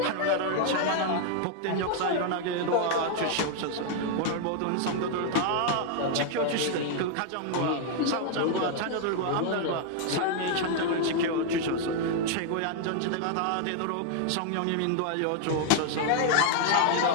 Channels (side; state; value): both; different; correlation 0.00